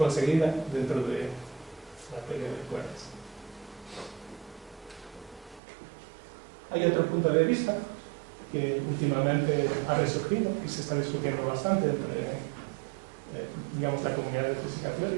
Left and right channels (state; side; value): drops out; left; at 5.6 s